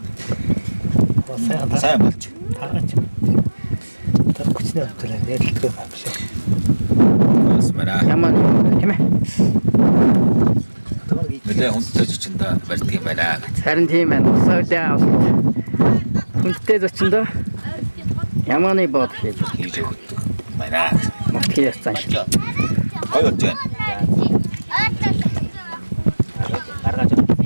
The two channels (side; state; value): both; inverted; correlation -1.00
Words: сайн болж. Смара. Ямар тийм ээ. Нэлээ хүнтэй зочиндоо барьдаг юм байна. Харин тийм байна. Саудаа хүнтэй зочиндоо ямааны бод хийж Байна. мөтгий яцсан шиг. Гой болж байна.